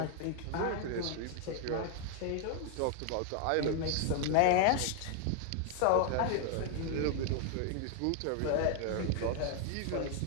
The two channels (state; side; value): different; both; correlation 0.00